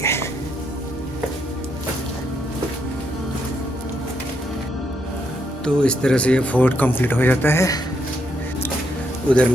है. तो इस तरह से ये फोर्ट कंप्लीट हो जाता है. उधर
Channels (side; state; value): both; normal; correlation 0.77